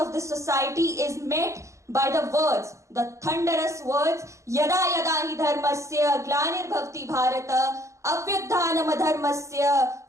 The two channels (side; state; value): left; late; 0.15 ms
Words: this society is met by the words, the thunderous words, Yada yada hi dharmasya glanir bharata avyuddhanam adharmasya